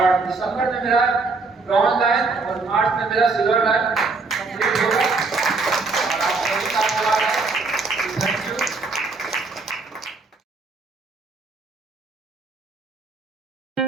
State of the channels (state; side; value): quieter; left; 4.0 dB